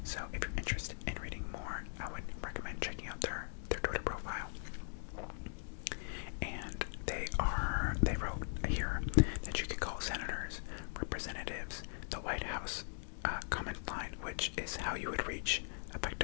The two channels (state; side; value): silent; right; digital silence